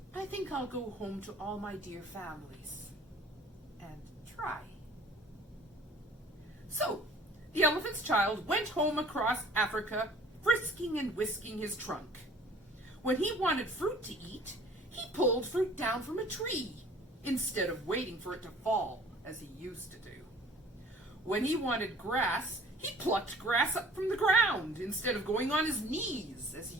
I think I'll go home to all my dear families and try." So, the elephant's child went home across Africa, frisking and whisking his trunk. When he wanted fruit to eat, he pulled fruit down from a tree, instead of waiting for it to fall, as he used to do. When he wanted grass, he plucked grass up from the ground, instead of going on his knees, as he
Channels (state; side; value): normal; both; correlation 0.51